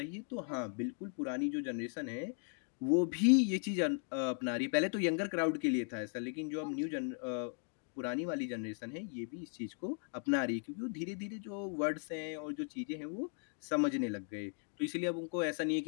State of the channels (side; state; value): right; silent; 53 dB below the other